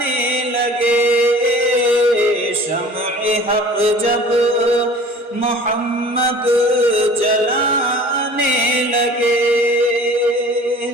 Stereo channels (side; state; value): both; normal; correlation 0.45